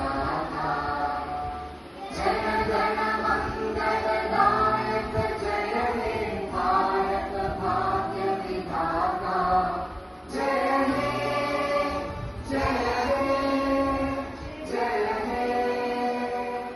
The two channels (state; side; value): identical; both; correlation 1.00